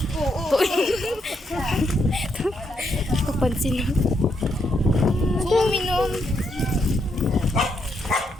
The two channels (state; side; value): normal; both; correlation 0.78